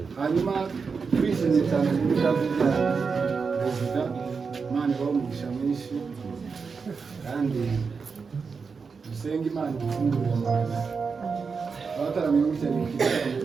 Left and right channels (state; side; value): quieter; left; 5.2 dB